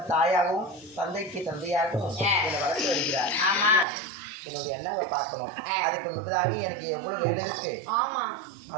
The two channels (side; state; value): left; drops out; at 3.9 s